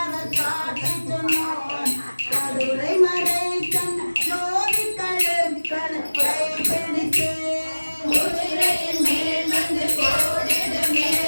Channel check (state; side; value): inverted; both; correlation -1.00